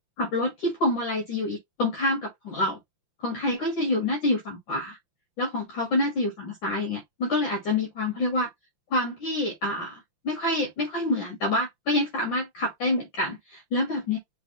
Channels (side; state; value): right; late; 5.8 ms